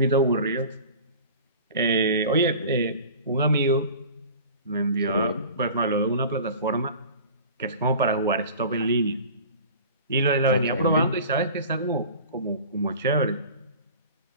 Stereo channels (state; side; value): inverted; both; correlation -0.41